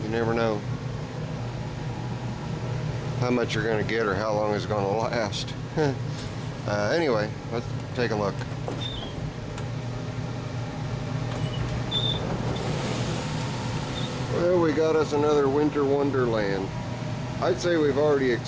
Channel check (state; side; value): identical; both; correlation 1.00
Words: You never know how much you're going to get or how long it's going to last. Anyway, let's take a look. Well, we got us another winter wonderland. I'd say we've already